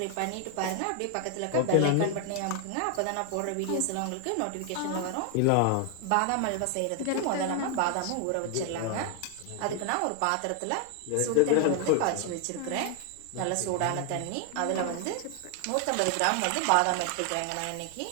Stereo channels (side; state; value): both; different; correlation 0.00